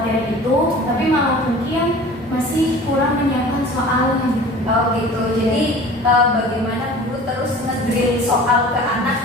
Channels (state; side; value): normal; both; correlation 0.42